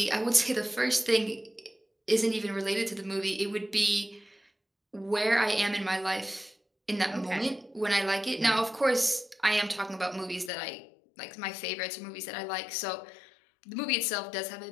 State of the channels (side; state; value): right; drops out; at 10.5 s